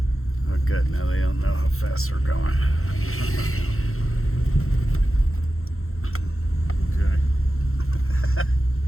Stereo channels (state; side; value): late; right; 0.62 ms